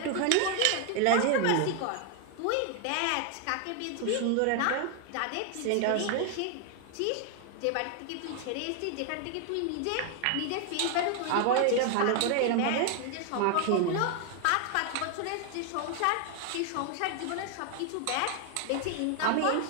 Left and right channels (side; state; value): both; different; correlation 0.00